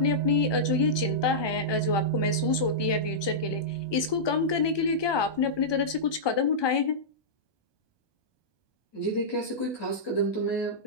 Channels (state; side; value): late; right; 1.2 ms